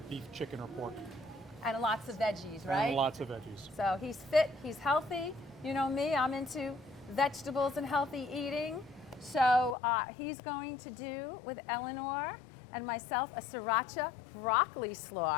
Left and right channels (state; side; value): drops out; right; at 9.8 s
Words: beef, chicken, or pork. And lots of veggies, right? And lots of veggies. So he's fit, he's healthy. You know me, I'm into vegetables and healthy eating. So he's going to do with Eleanor and myself a Sriracha broccoli